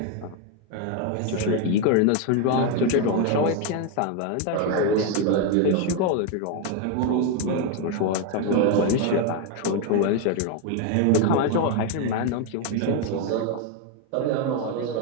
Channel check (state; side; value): different; both; correlation 0.02